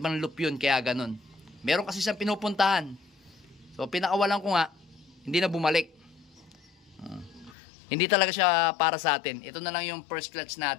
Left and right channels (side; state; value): right; drops out; at 7.6 s